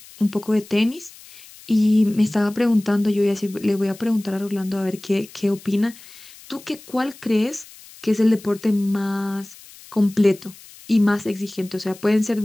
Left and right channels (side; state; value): left; noise; hiss, 21 dB below the sound